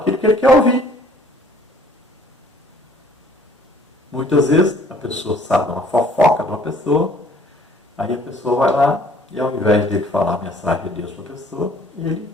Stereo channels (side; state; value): both; normal; correlation 0.57